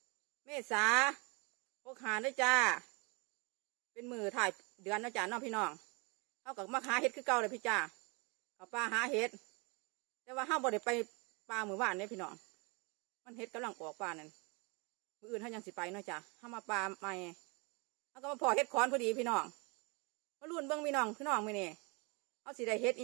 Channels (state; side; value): quieter; left; 30.6 dB